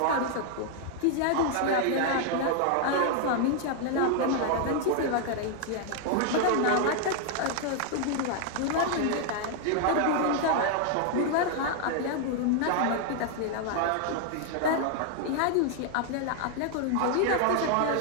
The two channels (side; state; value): both; different; correlation 0.00